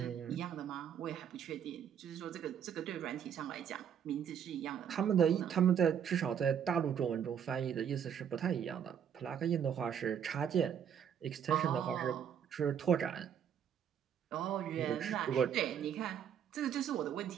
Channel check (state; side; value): quieter; left; 8.5 dB